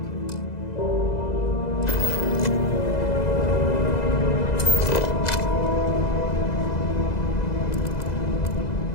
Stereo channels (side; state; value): right; late; 2.0 ms